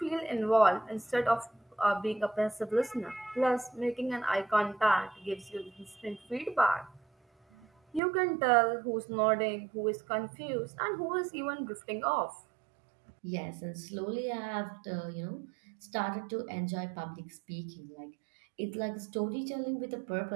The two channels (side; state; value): left; drops out; at 8.0 s